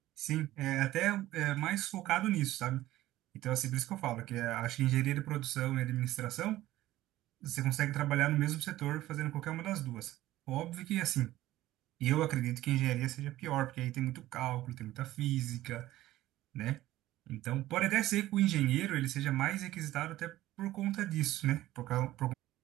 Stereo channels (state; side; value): quieter; left; 15.5 dB